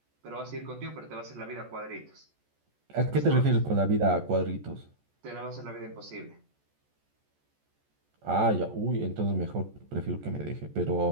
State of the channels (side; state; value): left; late; 14 ms